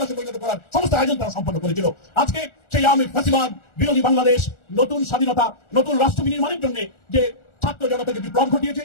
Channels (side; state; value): right; late; 1.4 ms